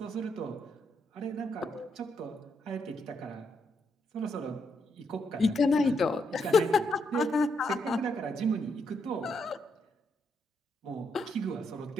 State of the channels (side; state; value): both; normal; correlation 0.78